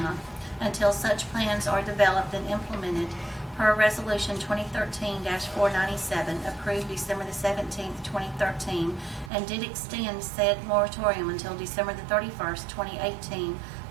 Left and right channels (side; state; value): left; drops out; at 9.3 s